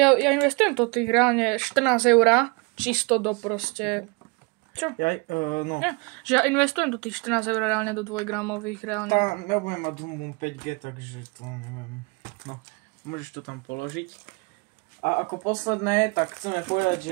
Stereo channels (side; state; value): left; quieter; 29.7 dB